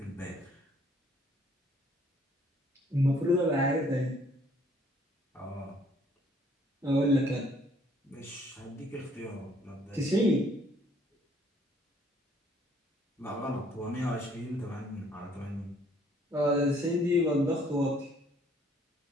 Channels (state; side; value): normal; both; correlation 0.62